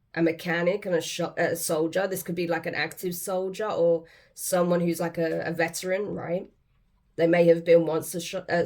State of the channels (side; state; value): both; identical; correlation 1.00